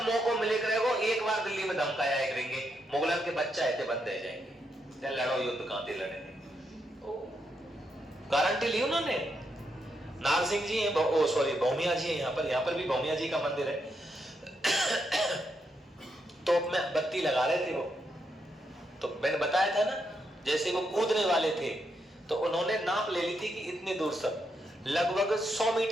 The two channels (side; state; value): both; normal; correlation 0.81